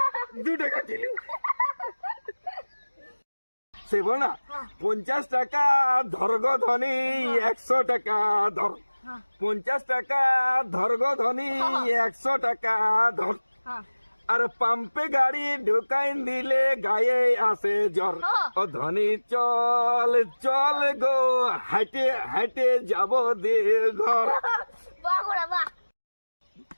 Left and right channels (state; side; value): inverted; both; correlation -1.00